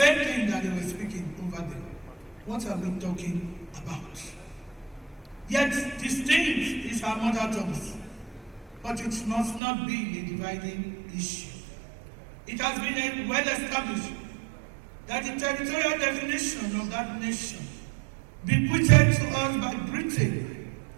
thing that they were speaking over there. What are we talking about? Yet distinct is our mother tongues, but it must not be a dividing issue. It has been well established that the territorial definition of that nation, bequeathed to us by Britain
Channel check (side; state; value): left; drops out; at 9.6 s